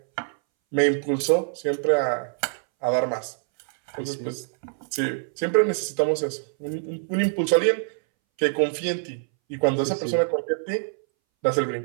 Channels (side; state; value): left; silent; 61 dB below the other